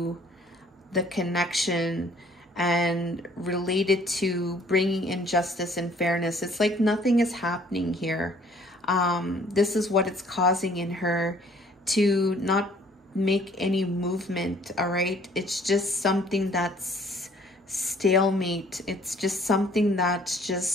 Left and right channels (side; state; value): both; normal; correlation 0.58